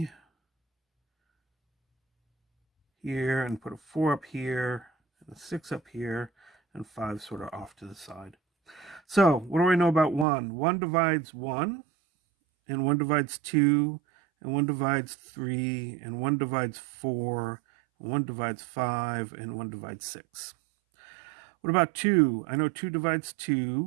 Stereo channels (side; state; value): left; drops out; at 10.2 s